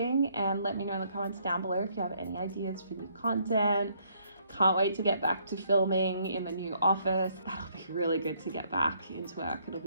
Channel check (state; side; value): inverted; both; correlation -0.68